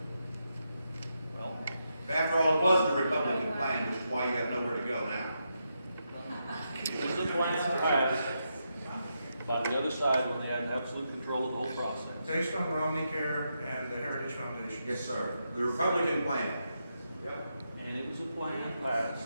the other side when they had absolute control of the whole process. Based on Romney Care and the Heritage Foundation. Yes, sir. The Republican plan. Yep. And it was a plan passed.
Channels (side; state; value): both; inverted; correlation -0.84